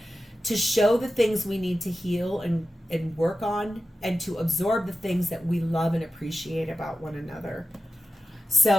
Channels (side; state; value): both; normal; correlation 0.93